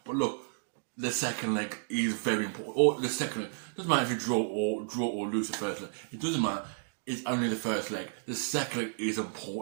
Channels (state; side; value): silent; left; digital silence